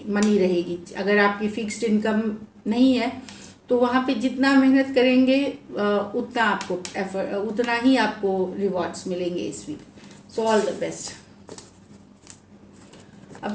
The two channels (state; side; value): identical; both; correlation 1.00